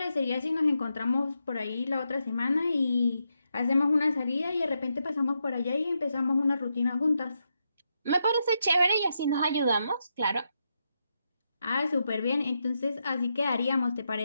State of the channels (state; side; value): inverted; both; correlation -0.84